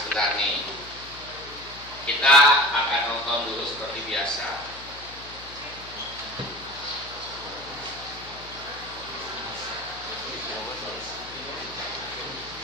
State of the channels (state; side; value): noise; left; hum, 19 dB below the sound